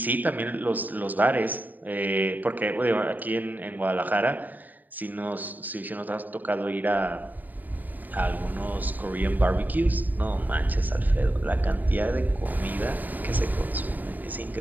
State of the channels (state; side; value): late; left; 0.085 ms